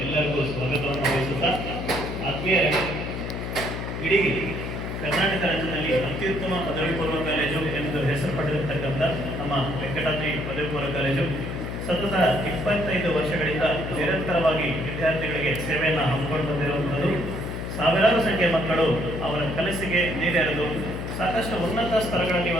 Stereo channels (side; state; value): left; noise; hum, 5 dB below the sound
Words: ಎಲ್ಲರಿಗೂ ಸ್ವಾಗತವನ್ನು ವಹಿಸುತ್ತಾ, ಆತ್ಮೀಯರೇ, ಇಡೀ ಕರ್ನಾಟಕ ರಾಜ್ಯದಲ್ಲಿ ಅತ್ಯುತ್ತಮ ಪದವಿ ಪೂರ್ವ ಕಾಲೇಜು ಎಂದು ಹೆಸರು ಪಡೆದಿರತಕ್ಕಂಥ ನಮ್ಮ ವೆಂಕಟಾದ್ರಿ ಪದವಿ ಪೂರ್ವ ಕಾಲೇಜು ಸತತ 25 ವರ್ಷಗಳಿಂದ ನಿರಂತರವಾಗಿ ವಿದ್ಯಾರ್ಥಿಗಳಿಗೆ ಸೇವೆಯನ್ನು ಹಮ್ಮಿಕೊಂಡು ಬಂದಿರುವಂಥದ್ದು. ಸಾವಿರಾರು ಸಂಖ್ಯೆಯ ಮಕ್ಕಳು ಅವರ ಕನಸಿಗೆ ನೀರೆರೆದು ಸಾಕಷ್ಟು ಉನ್ನತ ಸ್ತರಗಳಲ್ಲಿ